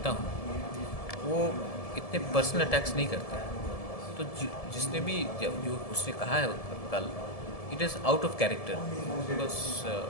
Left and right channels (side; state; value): right; late; 1.7 ms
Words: हूँ, वो इतने पर्सनल अटैक्स नहीं करते। तो जिसने भी जो उसने कहा है कल, it is out of character, because